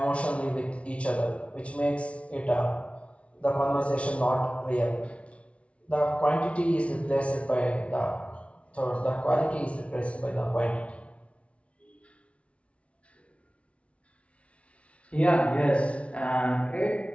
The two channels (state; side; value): late; right; 0.062 ms